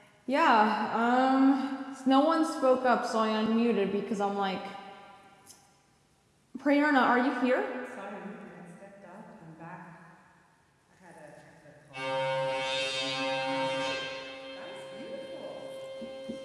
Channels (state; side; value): identical; both; correlation 1.00